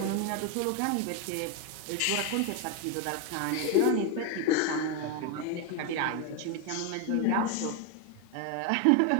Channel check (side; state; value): both; different; correlation 0.01